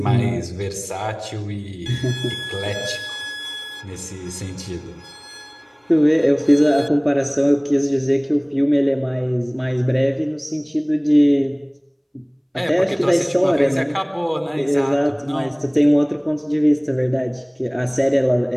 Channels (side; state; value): both; identical; correlation 1.00